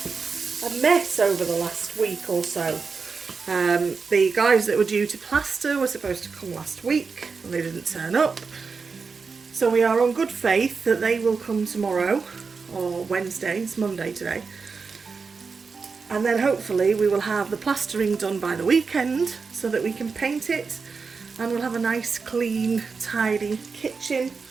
mess over the last week or so. The guys that were due to plaster were supposed to come last week and they didn't turn up. So we are on good faith that they will come tomorrow or Wednesday. It's Monday today. And then hopefully we will have the plastering done by the weekend so that we can paint it and we'll have a nice clean tidy kitchen.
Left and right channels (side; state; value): left; quieter; 5.0 dB